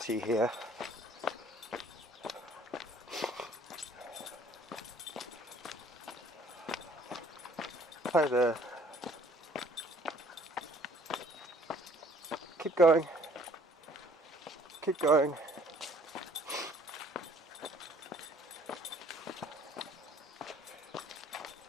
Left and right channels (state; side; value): normal; both; correlation 0.57